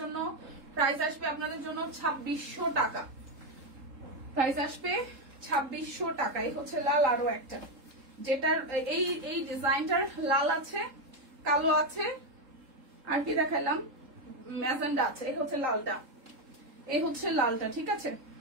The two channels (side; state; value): left; late; 3.7 ms